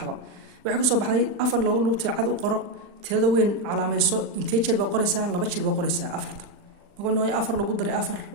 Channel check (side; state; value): left; late; 40 ms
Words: وحكسو بحضا أفر لو لقولت عاد وقرأ تهذا وين على ما يسوق إنتاج بقرة ساعة لا بتشيل بقرة ساعة أفرت نقول إنه أفر لو قدر أفر